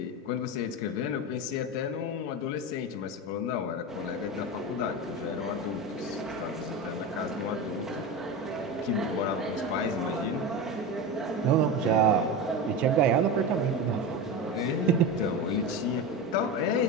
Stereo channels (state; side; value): normal; both; correlation 0.22